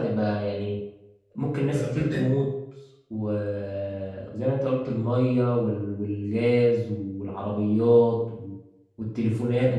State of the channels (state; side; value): identical; both; correlation 1.00